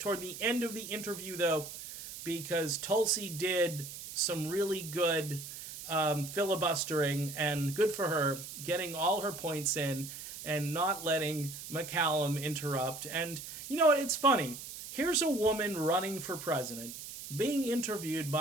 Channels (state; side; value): noise; right; hiss, 11 dB below the sound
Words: the end of the interview, though, because Tulsi did some really good filibustering, and good for her, getting all her points in and not letting McCallum interrupt. And you know what? It's funny. Here's a woman running for president, being interviewed